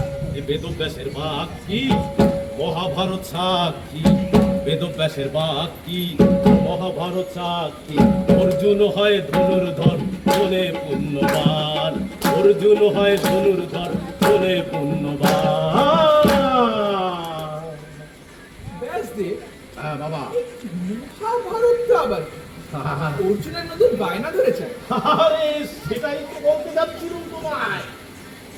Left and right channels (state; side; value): identical; both; correlation 1.00